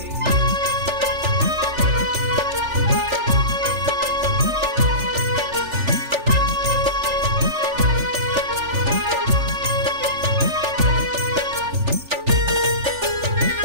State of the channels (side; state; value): left; late; 3.4 ms